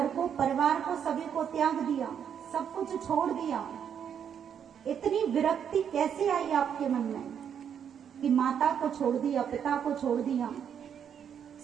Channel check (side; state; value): left; quieter; 8.2 dB